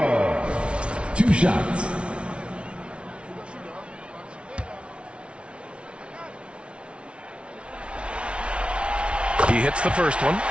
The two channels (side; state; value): left; late; 0.059 ms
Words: 2 shots. He hits the first one,